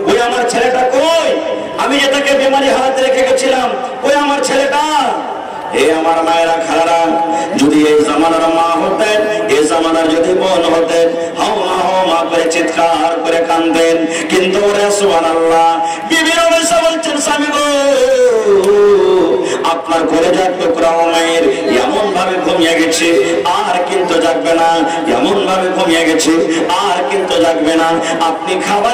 ওই আমার ছেলেটা কই, আমি যে তাকে বেমারি হারাতে রেখে গেছিলাম, ওই আমার ছেলেটা। এ আমার মায়েরা খালারা, যদি এই জামানার মা হতেন, এই জামানার যদি বোন হতেন, হাও মা করে চিৎকার করে কাঁদেন। কিন্তু ওরে সুবহানাল্লাহ, বিবি রমেশা বলছেন, স্বামী গো আপনার কলেজার টুকরা মায়ের এমন ভাবে ঘুমিয়ে গেছে আর কিন্তু জাগবে না, এমন ভাবে ঘুমিয়ে গেছে আর কিন্তু জাগবে না। আপনি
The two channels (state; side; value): identical; both; correlation 1.00